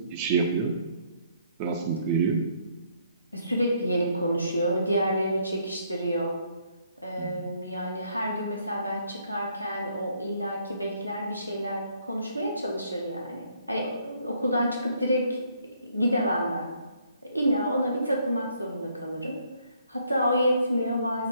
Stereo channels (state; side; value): inverted; both; correlation -0.67